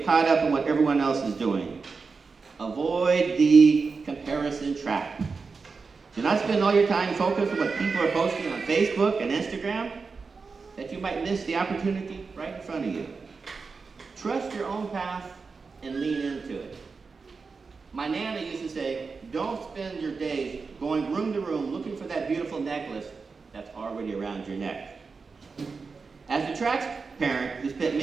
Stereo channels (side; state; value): left; quieter; 4.7 dB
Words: caught up in what everyone else is doing. Avoid the comparison trap. Do not spend all your time focused on what people are posting on Facebook and Instagram, that you might miss the opportunity right in front of you. Trust your own path and lean into it. My Nana used to say, don't spend your days going room to room looking for that beautiful necklace that's already around your neck. As a track parent who spent